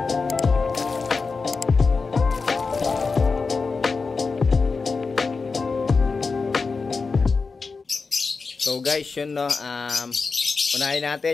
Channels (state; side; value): quieter; right; 4.5 dB